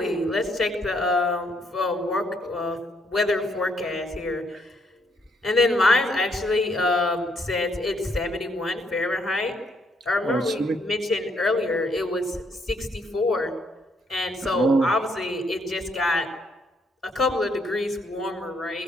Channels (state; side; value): normal; both; correlation 0.71